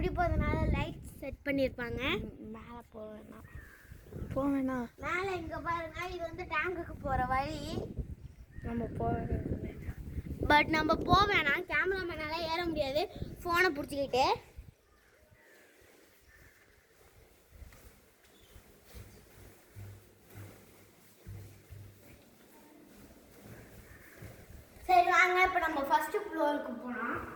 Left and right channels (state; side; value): identical; both; correlation 1.00